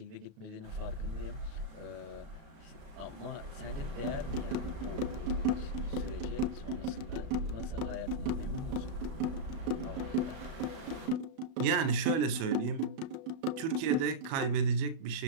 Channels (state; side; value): late; left; 37 ms